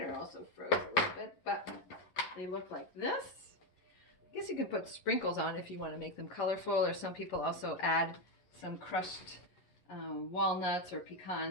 also froze a little bit, but they look like this. I guess you can put sprinkles on if you want to make them colorful, or some people also add some crushed walnuts or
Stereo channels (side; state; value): right; late; 11 ms